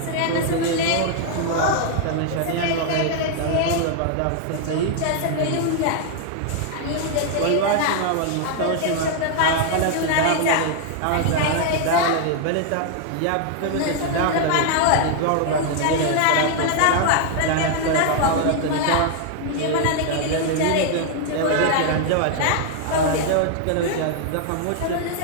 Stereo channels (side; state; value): both; different; correlation 0.00